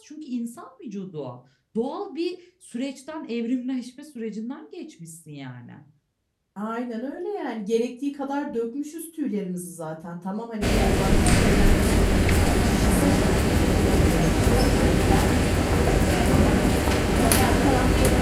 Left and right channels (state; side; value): identical; both; correlation 1.00